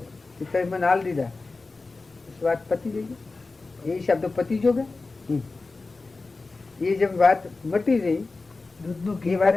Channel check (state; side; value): quieter; right; 3.7 dB